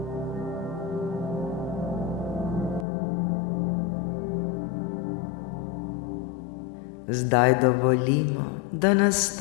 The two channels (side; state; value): right; drops out; at 2.9 s